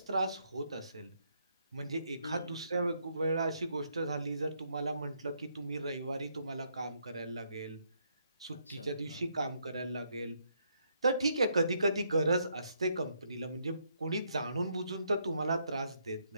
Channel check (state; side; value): inverted; both; correlation -0.74